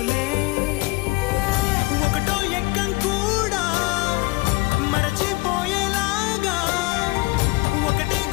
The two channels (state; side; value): quieter; right; 24.3 dB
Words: ఒకటో ఎక్కం కూడా మరచిపోయేలాగా ఒకటే